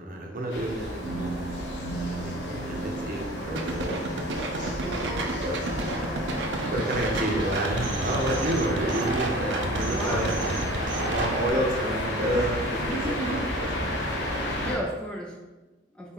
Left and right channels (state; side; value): normal; both; correlation 0.40